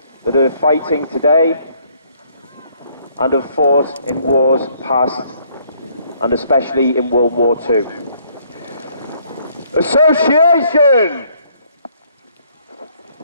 that are fighting today and have fought in wars past and especially in World War II. Association!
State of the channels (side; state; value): both; inverted; correlation -0.64